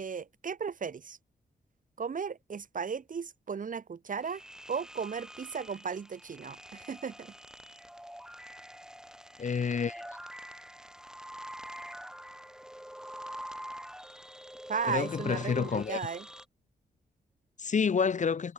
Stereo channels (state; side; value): normal; both; correlation 0.33